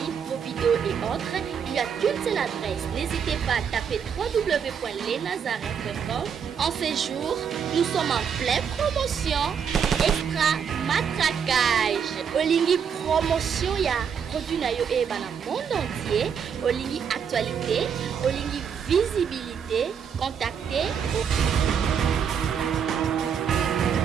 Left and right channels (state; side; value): quieter; left; 7.3 dB